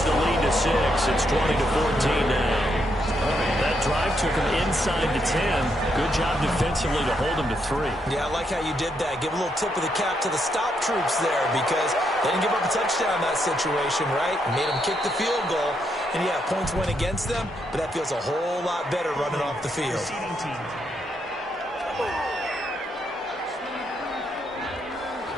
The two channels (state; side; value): normal; both; correlation 0.78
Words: the lead to 6. It's 20-14 now. That drive took him inside the 10. Good job defensively to hold him to 3. Yeah, I like how you did that. Give a little tip of the cap to the stop troops there because they didn't give up a touchdown in that situation, right? Made them kick the field goal. And, yeah, points went against them, but that feels a whole lot better running off the field.